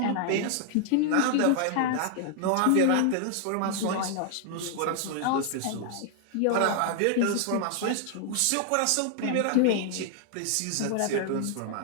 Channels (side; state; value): both; different; correlation 0.00